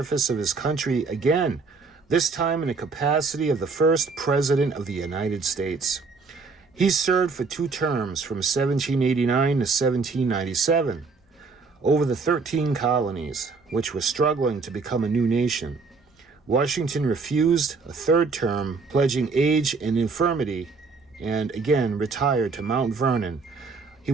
of his country again, this time in the capacity of the first President of the United States. He served for 2 terms from 1789 to 1797 over the 13 colonies, which were struggling to become a new nation. Washington refused a 3rd term, pledging age and infirmity, and again retired to Mount Vernon. He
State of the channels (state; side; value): quieter; left; 4.4 dB